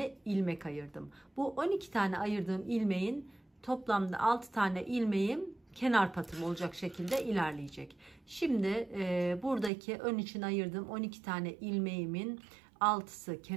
ilmek ayırdım. Bu 12 tane ayırdığım ilmeğin toplamda 6 tane ilmeğim kenar patım olacak şekilde ilerleyecek. Şimdi buradaki ön için ayırdığım 12 tane ilmeğimin 6'sı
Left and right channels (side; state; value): left; drops out; at 9.7 s